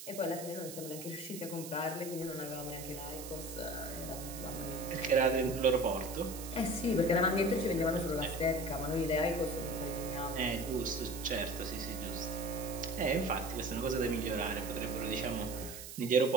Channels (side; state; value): right; noise; hiss, 11 dB below the sound